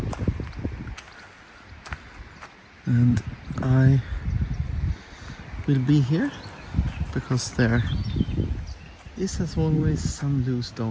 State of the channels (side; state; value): both; identical; correlation 1.00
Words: and I will be here because there is, as always, some loose